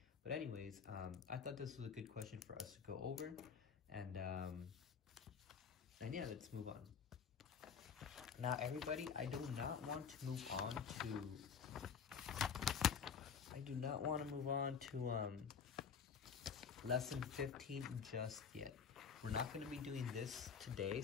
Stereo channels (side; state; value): right; quieter; 6.5 dB